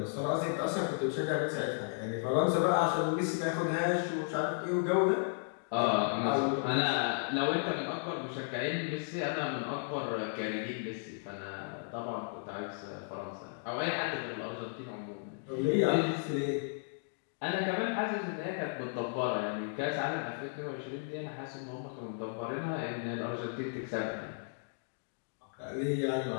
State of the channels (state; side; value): silent; right; digital silence